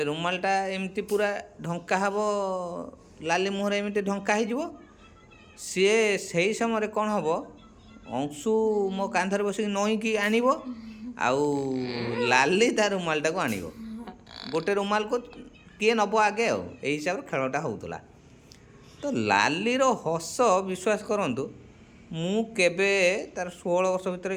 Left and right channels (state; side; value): identical; both; correlation 1.00